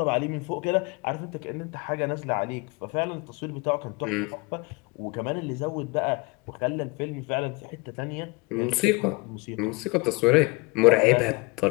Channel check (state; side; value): quieter; right; 26.3 dB